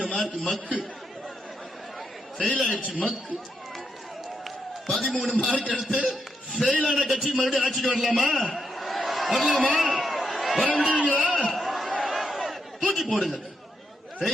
மார்க். மக்கு ஃபெயில் ஆயிடுச்சு. மக்கு 13 மார்க் எடுத்து ஃபெயில் ஆன கட்சி மறுபடியும் ஆட்சிக்கு வரலாமா? வர முடியுங்களா? தூக்கி போடுங்க.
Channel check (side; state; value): both; normal; correlation 0.81